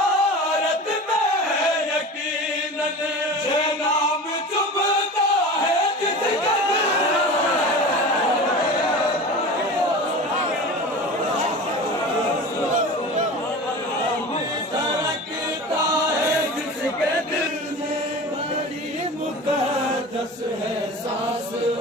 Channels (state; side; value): normal; both; correlation 0.33